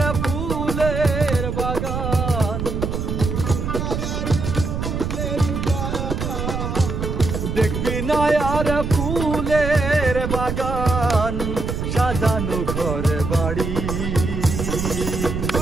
ফুলের বাগান দেখবি না আর ফুলের বাগান সাজানো ঘর বাড়ি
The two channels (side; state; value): right; noise; rumble, 3 dB below the sound